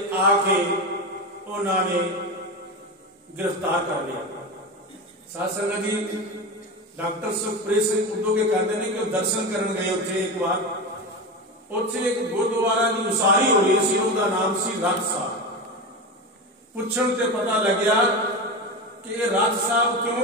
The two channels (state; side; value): normal; both; correlation 0.21